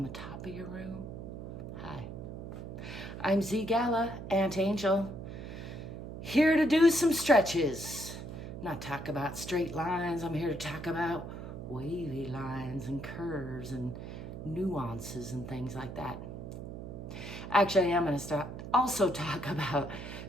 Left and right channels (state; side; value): noise; right; hum, 9 dB below the sound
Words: the top of your room? Hi, I'm ZGALA, Aunt Angel, here to do some stretches. Not talk about straight lines, I'm here to talk about wavy lines and curves and nuances and things like that. Actually, I'm going to also talk about